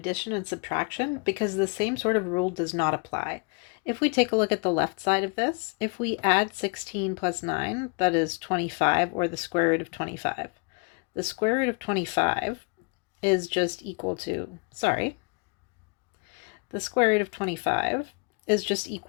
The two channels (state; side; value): quieter; right; 33.1 dB